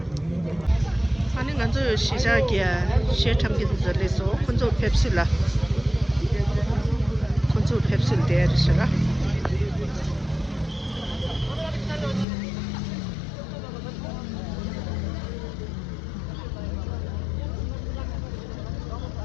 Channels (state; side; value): drops out; right; at 12.2 s